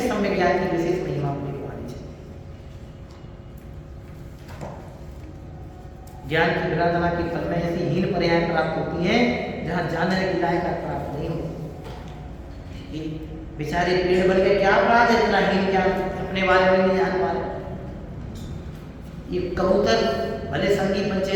सम्यक ज्ञान की विशेष महिमा अपने को आनी चाहिए। ज्ञान की विराधना के फल में ऐसी हीन पर्याय प्राप्त होती हैं जहां जानने की लायक प्राप्त नहीं होती। बेचारे पेड़ बन के क्या अपराध है, इतना हीन ज्ञान अपने बारे में नहीं जान पा रहे। ये कबूतर भले संगी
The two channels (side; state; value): both; identical; correlation 1.00